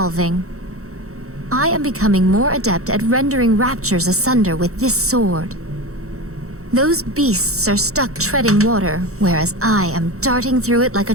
I am becoming more adept at rendering raptures asunder with this sword. Those beasts are stuck treading water, whereas I am darting through it like a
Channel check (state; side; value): late; left; 0.64 ms